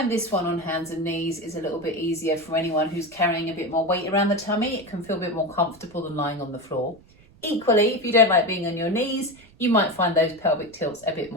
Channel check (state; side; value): noise; right; rumble, 27 dB below the sound